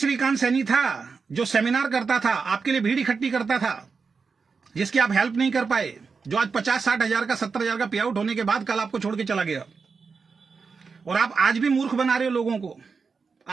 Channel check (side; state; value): left; quieter; 5.1 dB